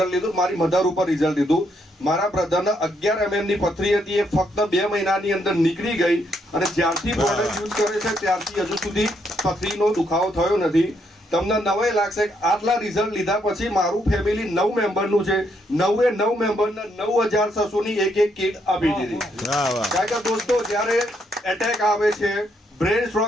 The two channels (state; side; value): normal; both; correlation 0.75